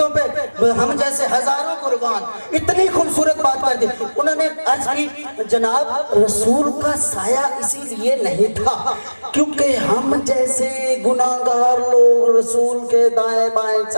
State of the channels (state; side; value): inverted; both; correlation -1.00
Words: پہ ہم جیسے ہزاروں قربان، اتنی خوبصورت بات کر دی۔ انہوں نے عرض کی جناب رسول کا سایہ اسی لیے نہیں تھا کیونکہ ہم جیسے گناہگار لوگ رسول کے دائیں بائیں